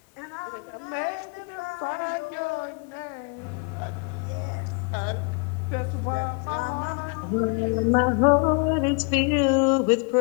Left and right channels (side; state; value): right; quieter; 33.7 dB